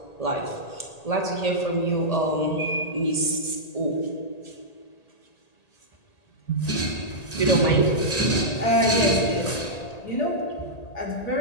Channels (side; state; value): right; late; 1.8 ms